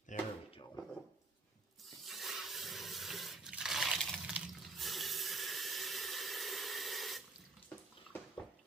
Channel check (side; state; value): left; quieter; 3.6 dB